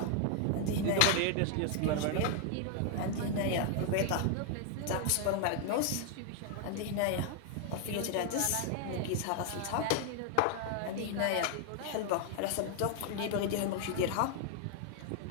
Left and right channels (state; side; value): different; both; correlation 0.00